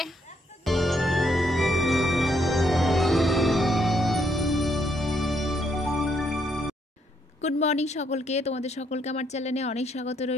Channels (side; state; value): both; normal; correlation 0.73